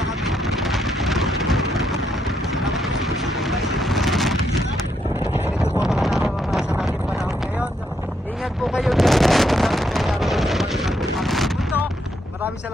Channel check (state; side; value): normal; both; correlation 0.77